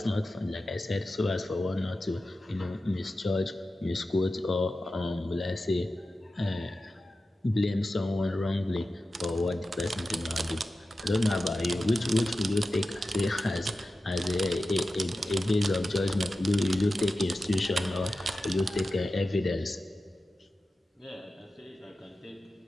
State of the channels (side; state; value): both; normal; correlation 0.93